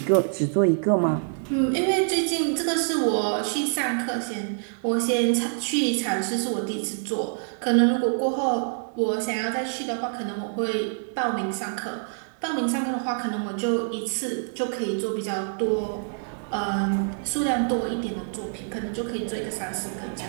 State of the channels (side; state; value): left; silent; 57 dB below the other